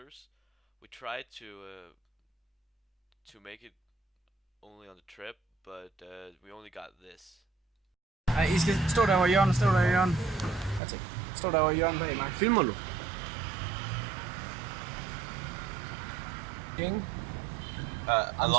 We tried to make it only on the trip, but we only got this. Nej, I skal stå der over hjørnet, stå der i hjørnet. That's it. Stå der over hjørnet bag mig. Filmer du? I'm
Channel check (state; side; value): drops out; left; at 10.8 s